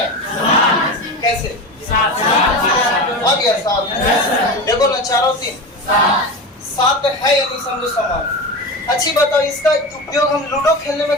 कैसे? आ गया 7। देखो ना 4 और 3 7 है, यानी समझो समान। अच्छी बताओ इसका उपयोग हम लूडो खेलने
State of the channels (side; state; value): both; normal; correlation 0.25